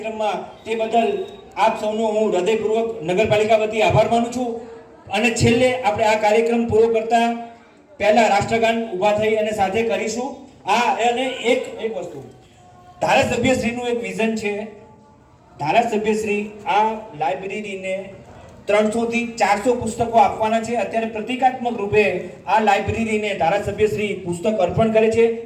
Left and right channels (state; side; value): identical; both; correlation 1.00